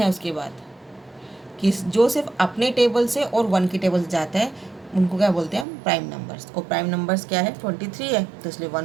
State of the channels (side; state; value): left; drops out; at 5.7 s